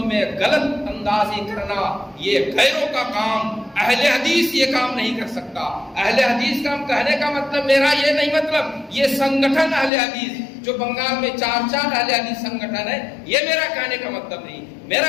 میں غلط اندازی کرنا یہ غیروں کا کام، اہل حدیث یہ کام نہیں کر سکتا۔ اہل حدیث کا کہنے کا مطلب میرا یہ نہیں، مطلب یہ سنگٹھن اہل حدیث جو بنگال میں 4 اہل حدیث سنگٹھن ہے، یہ میرا کہنے کا مطلب نہیں۔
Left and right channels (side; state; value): right; drops out; at 9.9 s